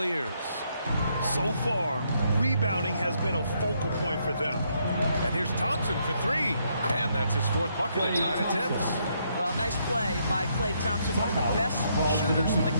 So far, rebounding has been a focal point for them. And here's Thompson for three. And that's his fourth bucket in 9 attempts. Well, nice play by Klay Thompson, one of the best shooters in the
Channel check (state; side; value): inverted; both; correlation -0.74